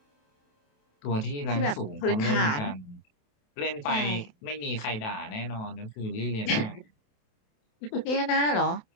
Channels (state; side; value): late; right; 28 ms